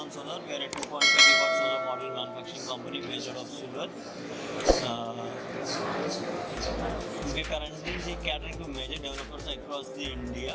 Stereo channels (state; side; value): identical; both; correlation 1.00